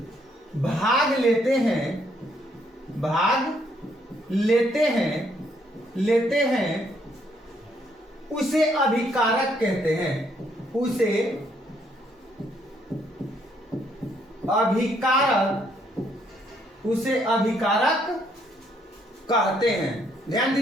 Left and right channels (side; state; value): both; normal; correlation 0.70